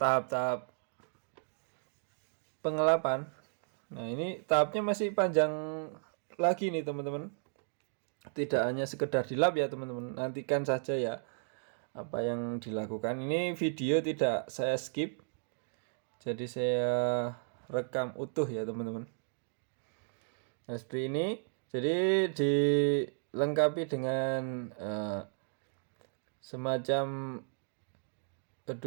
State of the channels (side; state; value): left; silent; digital silence